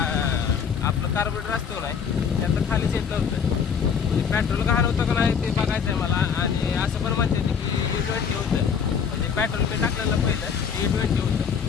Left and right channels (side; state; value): right; quieter; 6.8 dB